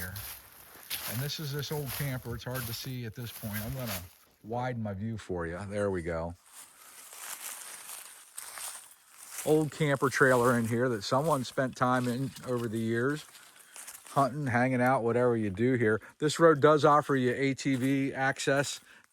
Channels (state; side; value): identical; both; correlation 1.00